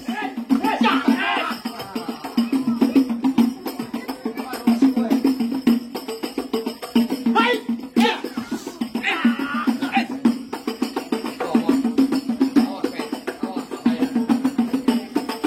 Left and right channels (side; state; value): both; identical; correlation 1.00